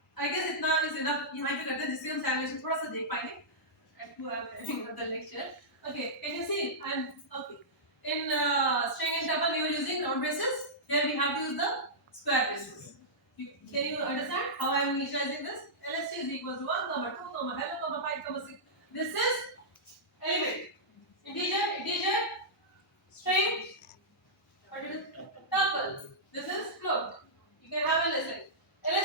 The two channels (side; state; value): both; normal; correlation -0.13